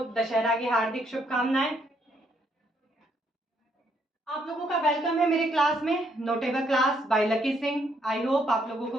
दशहरा की हार्दिक शुभकामनाएं। आप लोगों का वेलकम है मेरे क्लास में, notable class by Lucky Singh. I hope आप लोगों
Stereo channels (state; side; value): normal; both; correlation 0.72